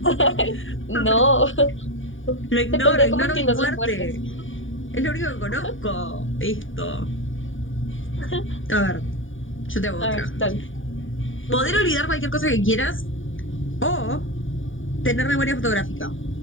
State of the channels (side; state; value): right; late; 0.57 ms